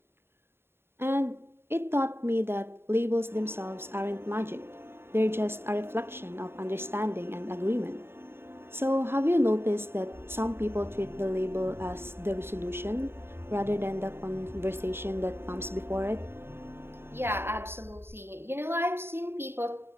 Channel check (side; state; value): left; late; 0.11 ms